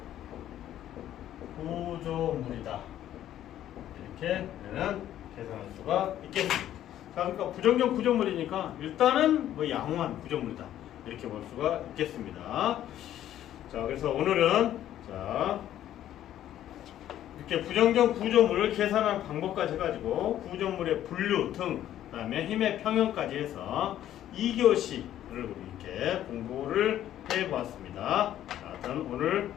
구조물이다. 이렇게 우리는 계산할 수가 있겠습니다. 자, 그러니까 부정정 구조물이니까 일단은 뭐 양호한 구조물이다. 이렇게 볼 수가 있겠습니다. 자, 그래서 오늘은 자 이렇게 부정정 구조물을 계산하는 방법까지 해가지고 구조물의 분류 등 그다음에 힘의 평형까지 해서 2교시를 이렇게 공부를 해보았습니다. 자, 저는 오늘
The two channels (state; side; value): quieter; right; 11.9 dB